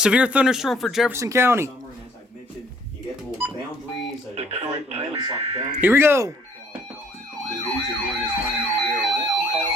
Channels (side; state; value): both; normal; correlation 0.61